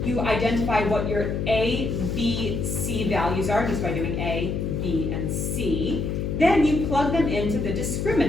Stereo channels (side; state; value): left; noise; hum, 2 dB below the sound